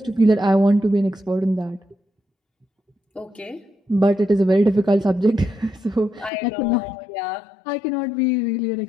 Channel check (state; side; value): drops out; right; at 6.3 s